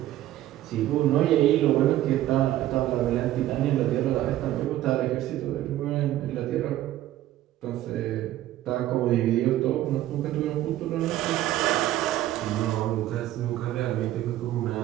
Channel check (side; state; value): left; quieter; 14.0 dB